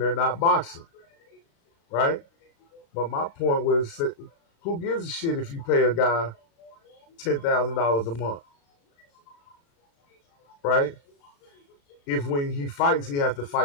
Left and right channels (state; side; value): late; right; 36 ms